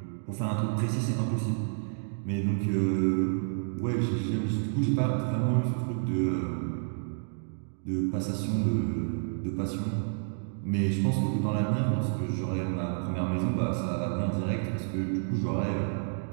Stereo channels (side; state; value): left; silent; digital silence